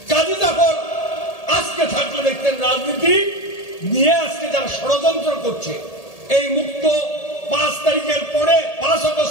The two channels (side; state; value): right; late; 1.8 ms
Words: কাজী জাফর আজকে থাকলে দেখতেন রাজনীতি নিয়ে আজকে যারা ষড়যন্ত্র করছে, এই মুক্ত 5 তারিখের পরে 5